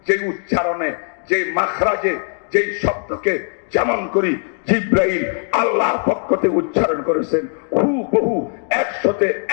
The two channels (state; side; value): silent; right; 56 dB below the other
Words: যে উচ্চারণে, যে মাখরাজে, যে শব্দকে যেমন করি জিবরাইল আল্লাহর পক্ষ থেকে উচ্চারণ করেছেন, হুবহু